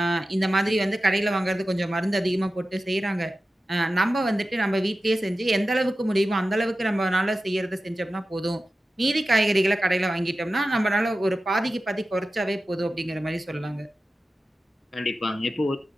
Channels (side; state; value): both; normal; correlation 0.94